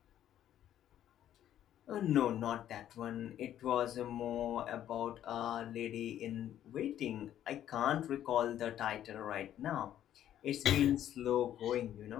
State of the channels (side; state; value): right; quieter; 11.3 dB